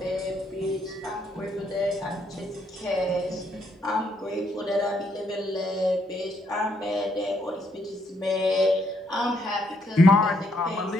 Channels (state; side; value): normal; both; correlation 0.73